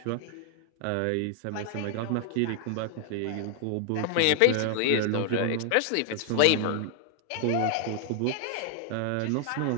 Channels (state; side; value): different; both; correlation 0.00